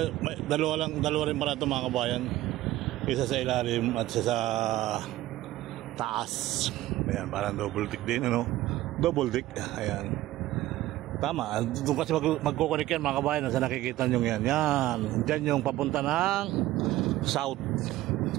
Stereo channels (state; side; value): quieter; left; 15.8 dB